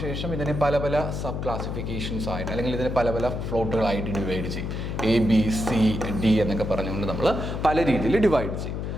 ശേഷം ഇതിനെ പല പല സബ് ക്ലാസിഫിക്കേഷൻസ് ആയിട്ട് അല്ലെങ്കിൽ ഇതിനെ പല പല പ്ലോട്ടുകളായിട്ട് ഡിവൈഡ് ചെയ്യും. ABCD എന്നൊക്കെ പറഞ്ഞുകൊണ്ട് നമ്മൾ പല രീതിയിൽ ഡിവൈഡ് ചെയ്യും.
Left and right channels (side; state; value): left; noise; hum, 4 dB below the sound